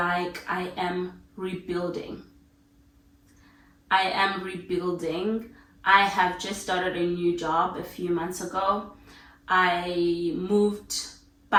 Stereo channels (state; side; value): identical; both; correlation 1.00